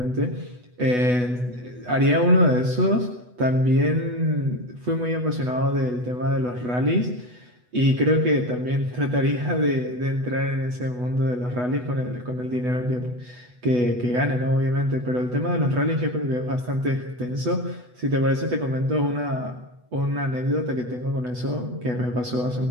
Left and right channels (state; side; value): late; left; 8.1 ms